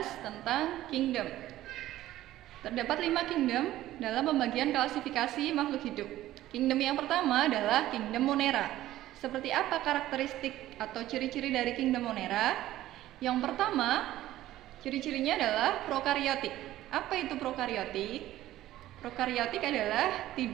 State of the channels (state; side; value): quieter; left; 14.5 dB